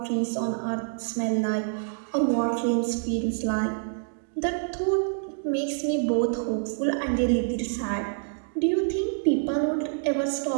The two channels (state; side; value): silent; left; digital silence